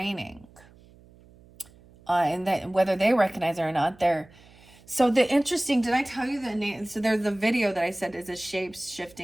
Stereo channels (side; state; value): right; noise; hum, 25 dB below the sound